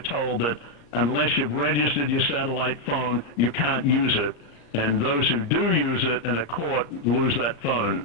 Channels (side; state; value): right; late; 35 ms